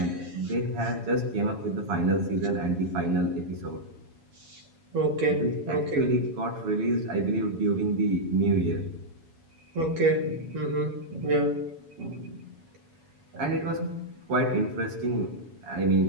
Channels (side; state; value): left; late; 7.2 ms